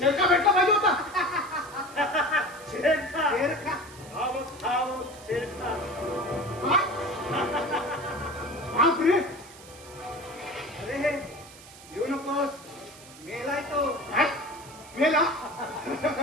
भेटला पाहिजे होता. शेरखा शेरखा. खाव शेरखा. बापरे अरे येऊ नकोस. मेलाय तो. काय? मेला.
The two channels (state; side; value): noise; right; hiss, 19 dB below the sound